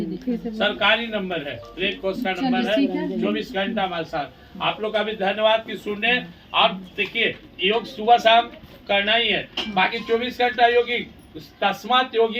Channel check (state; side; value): identical; both; correlation 1.00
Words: सरकारी नंबर है, रेड क्रॉस का नंबर है, 24 घंटा हमारे साथ। आप लोग का भी धन्यवाद कि सुनने। और देखिए योग सुबह शाम करना ही है, बाकी 24 घंटा योगी। तस्मात